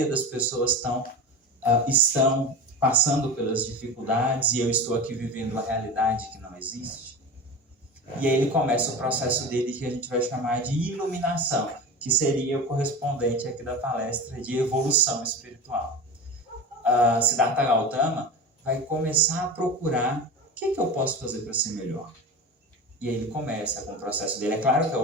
das pessoas estão passando pelas dificuldades e eu estou aqui vivendo uma realidade que não existe? E aí ele começa o processo dele que a gente vai chamar de iluminação, que seria o correspondente aqui da palestra de evolução espiritual. Siddhartha Gautama vai começar a procurar o que eu posso fazer para ser melhor. E aí ele começa com o processo dele. É claro que é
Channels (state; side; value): normal; both; correlation 0.28